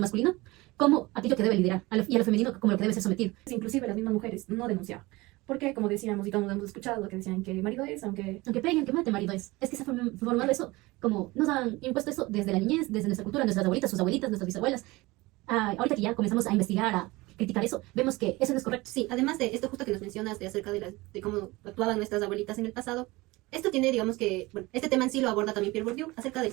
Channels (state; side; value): quieter; left; 21.6 dB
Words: masculino como aquello que debe liderar y a lo femenino como lo que debe ser sometido. Inclusive las mismas mujeres no denunciaban. Porque, como decíamos, y todos hemos escuchado lo que decían que marido es, Aunque peguen, que mate, marido es que se ha formado eso, como nos han impuesto eso desde la niñez, desde nuestra cultura, nuestras abuelitas, sus abuelitas, nuestras bisabuelas. Ahorita que ya comenzamos a investigar, a criticar eso, vemos que eso no es correcto. Sí, además de esto justo que nos mencionas de acerca de cómo actuaban nuestras abuelitas en el pasado, esto tiene, digamos que, bueno, este tema en sí lo aborda también Pierre Bourdieu acerca